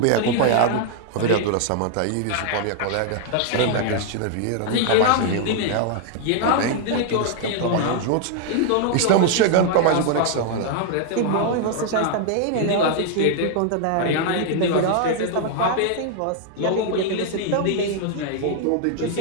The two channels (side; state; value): both; different; correlation 0.00